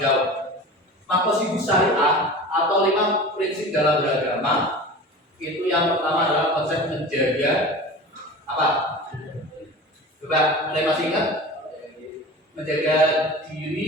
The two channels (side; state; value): both; normal; correlation 0.35